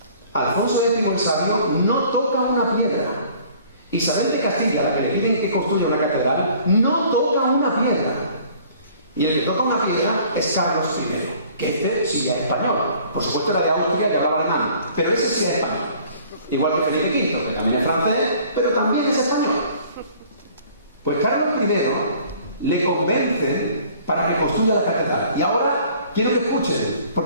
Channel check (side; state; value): both; inverted; correlation -0.54